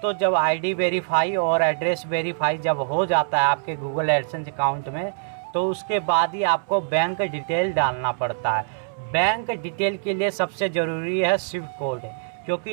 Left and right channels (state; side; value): silent; left; 63 dB below the other